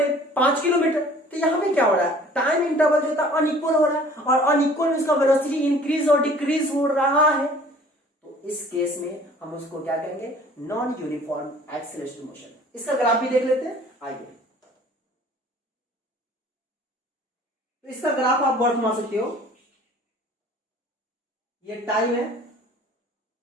5 किलोमीटर। तो यहां पे क्या हो रहा है, टाइम इंटरवल जो था अनइक्वल हो रहा है, और अनइक्वल में उसका वेलोसिटी इंक्रीज और डिक्रीज हो रहा है, तो इस केस में हम उसको क्या कहेंगे, नॉन यूनिफॉर्म एक्सेलरेशन मोशन। इसका ग्राफ भी देख लेते हैं, आइए। तो इसका ग्राफ आप वर्ड मान सकते हो, ये टाइम है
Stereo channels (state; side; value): normal; both; correlation 0.51